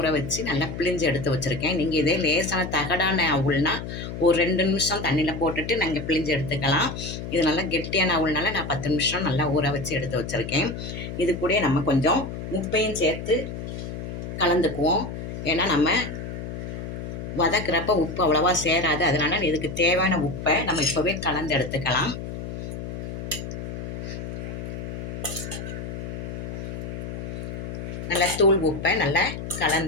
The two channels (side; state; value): left; noise; hum, 7 dB below the sound